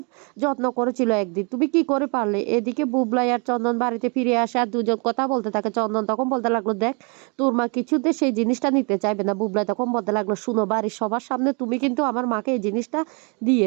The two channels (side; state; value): left; quieter; 34.2 dB